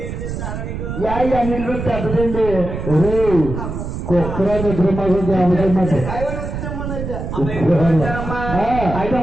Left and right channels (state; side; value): noise; right; rumble, 6 dB below the sound